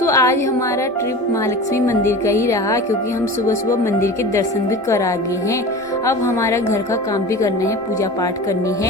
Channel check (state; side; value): normal; both; correlation 0.34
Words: आज हमारा ट्रिप महालक्ष्मी मंदिर का ही रहा, क्योंकि हम सुबह सुबह मंदिर के दर्शन भी कर आ गए हैं। अब हमारा घर का काम भी करना है, पूजा पाठ करनी